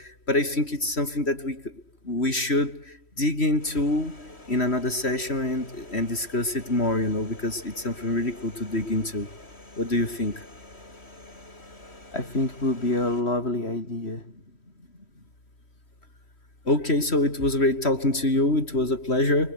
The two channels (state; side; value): late; right; 3.1 ms